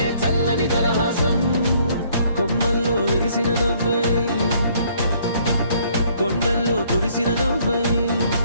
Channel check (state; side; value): inverted; both; correlation -0.63